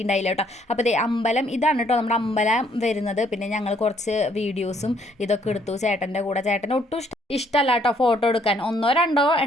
കേട്ടോ. അപ്പോൾ ദേ അമ്പലം ഇതാണ് കേട്ടോ നമ്മുടെ അമ്പലം വരുന്നത്. പിന്നെ ഞങ്ങൾ കുറച്ച് വീഡിയോസും ഇതൊക്കെ എടുത്തു ചേട്ടൻ്റെ കൂടെ. ചേട്ടന് ഒട്ടും ഇഷ്ടമല്ല കേട്ടോ ഫോട്ടോ എടുക്കാൻ. 1-2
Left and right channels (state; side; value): normal; both; correlation 0.66